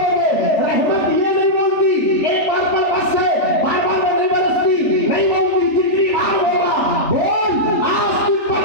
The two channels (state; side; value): late; right; 3.4 ms